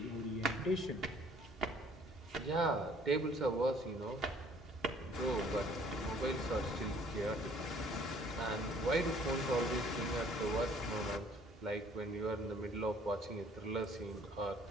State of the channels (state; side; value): normal; both; correlation 0.57